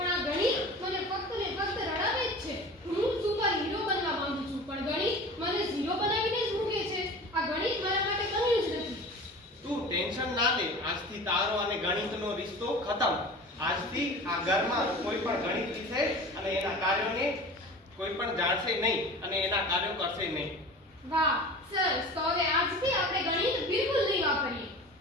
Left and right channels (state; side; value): normal; both; correlation 0.37